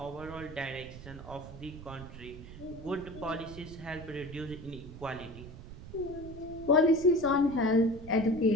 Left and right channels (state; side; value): noise; right; rumble, 14 dB below the sound